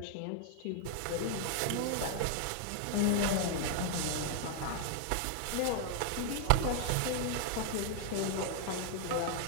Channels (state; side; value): different; both; correlation 0.00